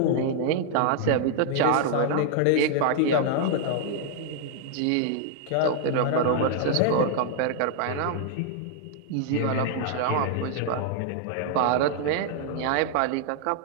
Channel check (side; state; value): both; different; correlation 0.00